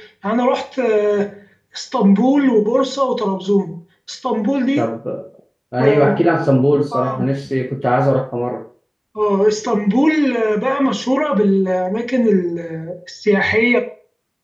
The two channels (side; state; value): both; identical; correlation 1.00